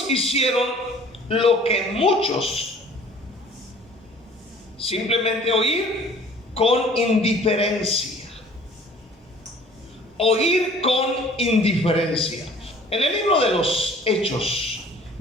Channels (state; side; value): normal; both; correlation 0.51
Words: hicieron lo que muchos simplemente oír con indiferencia. Oír con indiferencia. En el libro de los Hechos,